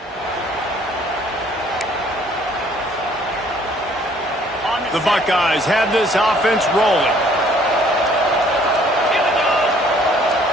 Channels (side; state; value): both; normal; correlation 0.60